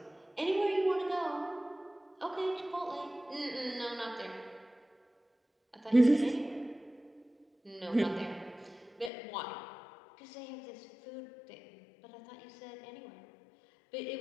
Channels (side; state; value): right; drops out; at 9.1 s